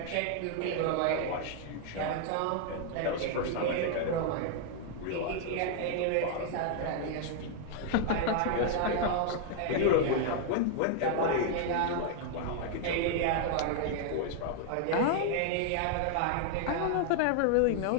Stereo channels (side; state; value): both; different; correlation 0.00